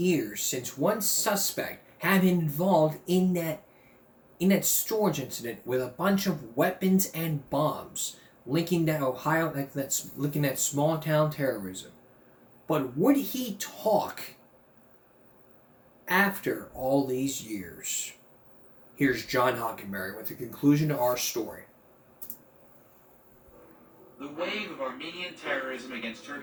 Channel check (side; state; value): both; identical; correlation 1.00